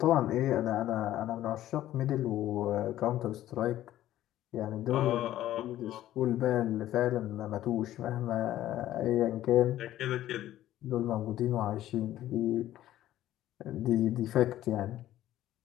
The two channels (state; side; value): quieter; right; 13.5 dB